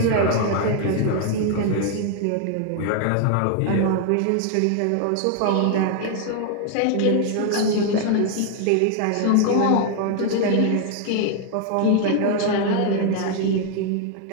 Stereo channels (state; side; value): different; both; correlation 0.00